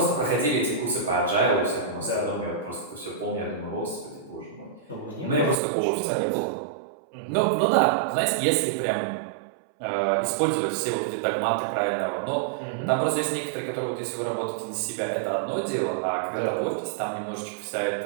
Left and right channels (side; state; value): left; drops out; at 5.6 s